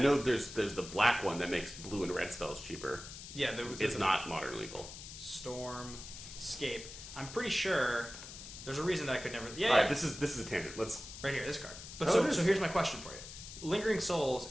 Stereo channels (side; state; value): left; noise; hiss, 12 dB below the sound